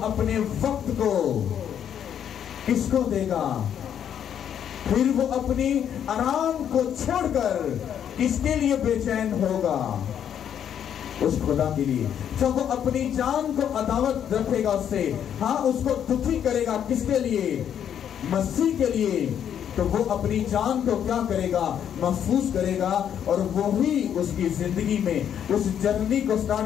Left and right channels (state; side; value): quieter; right; 9.2 dB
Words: अपने वक्त को किसको देगा? फिर वो अपनी आराम को छोड़कर किसके लिए बेचैन होगा? उस खुदा के लिए। जब वो अपनी जान को अदावत रखेगा उससे, हाँ, उसको दुखी करेगा, किसके लिए? मसीह के लिए। तो वो अपनी जान को क्या करेगा? महफूज करेगा, और वो ही उसकी जिंदगी में उस जर्नी को